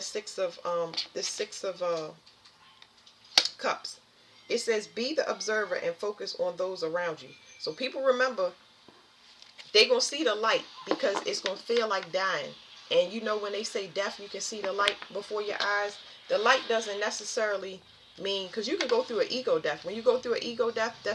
6 of cups. It says be the observer and focus on those around you. So people remember, they're going to see the light because it's going to feel like dying. And you know when they say death, you can see the light before your eyes. The light doesn't necessarily mean, because you can go through an ego death. When you go through an ego death,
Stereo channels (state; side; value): identical; both; correlation 1.00